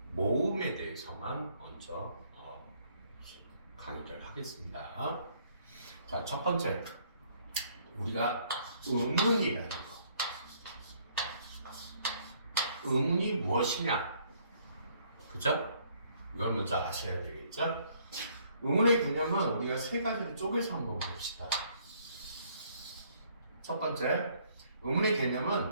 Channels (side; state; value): both; inverted; correlation -0.65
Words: 모음에 대해서만 먼저 강의를 하겠습니다. 자, 첫 번째, 우리가 의문이라는 거. 의문이 무엇이냐? 그죠? 이걸 먼저 아셔야 되겠죠? 의문의 개념은 우리가 세 가지로 쪼개서 한번 봅시다. 첫 번째, 의문의